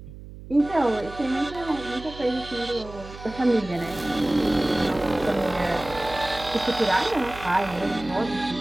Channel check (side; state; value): right; noise; hum, 15 dB below the sound